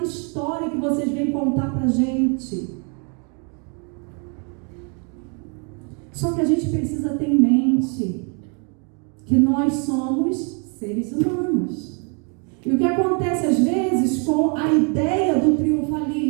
história que vocês vêm contar para a gente. Só que a gente precisa ter em mente que nós somos seres humanos. E o que acontece às vezes com a ideia do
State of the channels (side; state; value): left; quieter; 37.4 dB